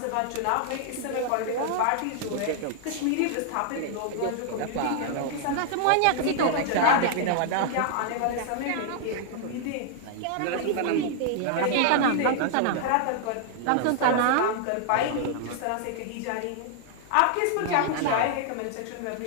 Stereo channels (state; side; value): different; both; correlation 0.00